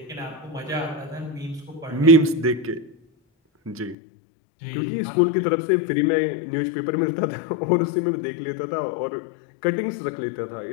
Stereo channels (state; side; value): drops out; right; at 4.0 s